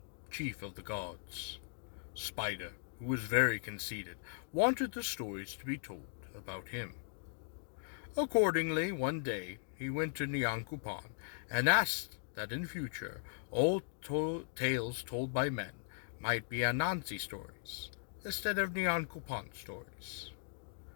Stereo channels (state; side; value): silent; right; digital silence